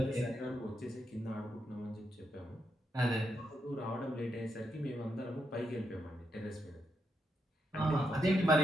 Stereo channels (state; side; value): normal; both; correlation 0.82